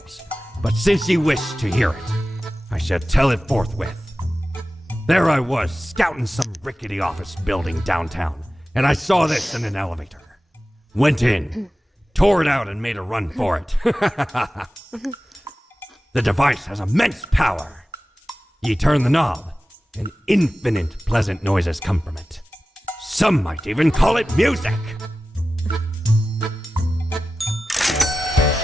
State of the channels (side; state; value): both; normal; correlation 0.95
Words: but since ye wish to hear it, I shall tell it forthwith. There I was, scouting some rickety office building downtown, and I saw this in an elevator. Went in, tore it out, and made a run for it. The device has immense power. Ye turn the knob, and infinite pleasant noises come from it. Some might even call it music.